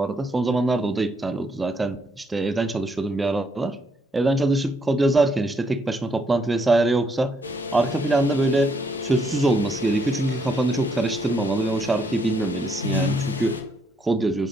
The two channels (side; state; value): both; normal; correlation 0.73